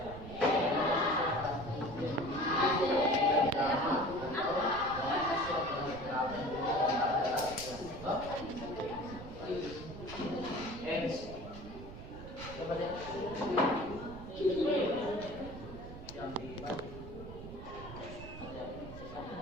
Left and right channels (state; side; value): noise; right; rumble, 12 dB below the sound